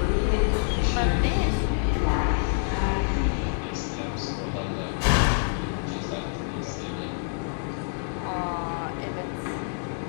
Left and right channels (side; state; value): right; silent; digital silence